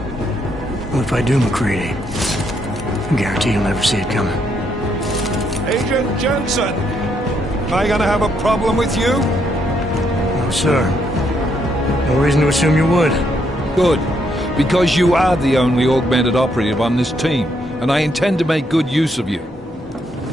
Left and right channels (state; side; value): normal; both; correlation 0.75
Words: Well, if I do, McCready, I guarantee you'll never see it coming. Agent Jensen! Am I gonna have a problem with you? No, sir. No reason to assume you would. Good, because you are the only augmented operative on this team, and I intend to make good use of you.